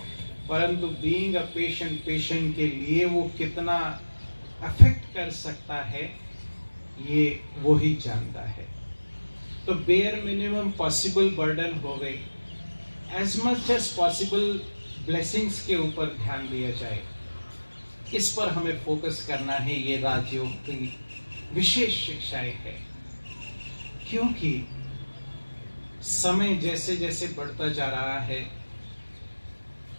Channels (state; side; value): inverted; both; correlation -1.00